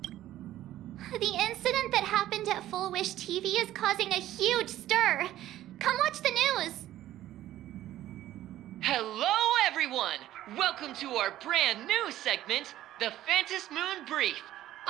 The incident that happened at Fulwish TV is causing a huge stir. Come watch the news. Hello, everyone! Welcome to our brand new segment, the Phantasmoon Brief.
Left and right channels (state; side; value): quieter; left; 13.7 dB